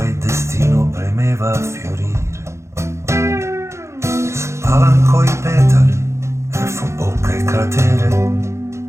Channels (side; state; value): left; late; 0.14 ms